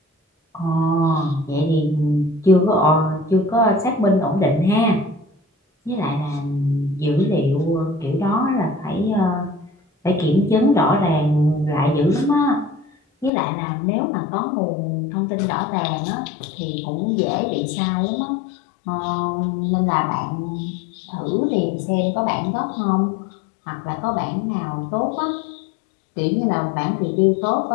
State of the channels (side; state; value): right; drops out; at 13.3 s